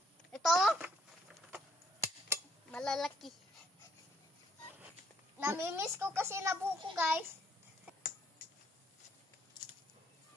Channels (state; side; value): normal; both; correlation 0.69